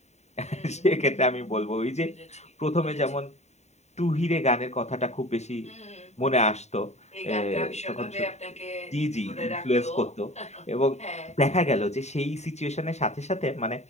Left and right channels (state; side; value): late; right; 0.32 ms